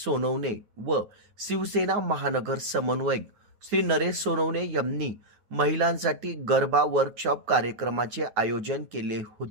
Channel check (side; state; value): left; late; 9.4 ms